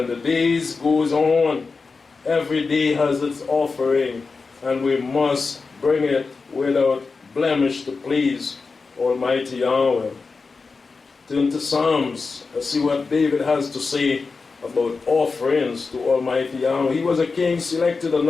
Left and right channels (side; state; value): right; quieter; 4.4 dB